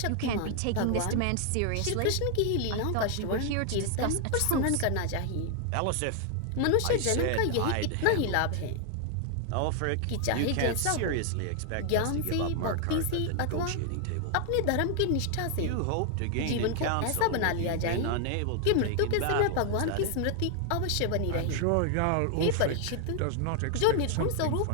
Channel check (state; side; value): different; both; correlation 0.00